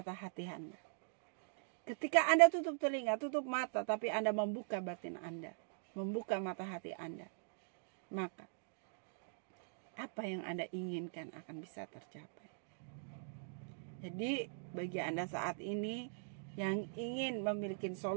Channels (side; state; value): left; silent; digital silence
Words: hati Anda. Ketika Anda tutup telinga, tutup mata, tapi Anda membuka batin Anda, membuka mata hati Anda, maka apa yang Anda inginkan akan bisa tercapai. Jadi bagi Anda saat ini yang ingin memiliki